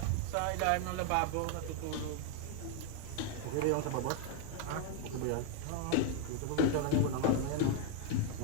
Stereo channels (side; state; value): both; different; correlation 0.00